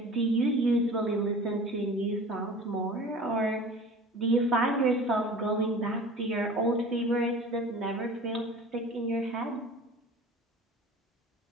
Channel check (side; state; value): both; normal; correlation 0.41